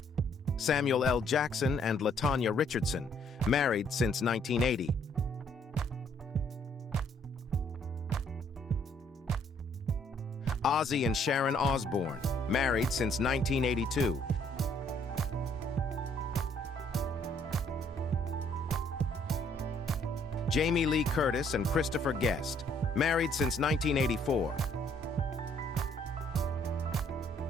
Samuel L. Jackson and LaTanya Richardson, married since 1980. Ozzy and Sharon Osbourne, married since 1982. Jamie Lee Curtis and Christopher Guest, married since 1984.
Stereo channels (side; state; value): both; normal; correlation 0.65